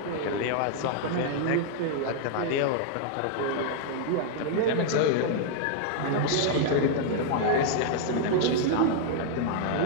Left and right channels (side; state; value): both; different; correlation -0.01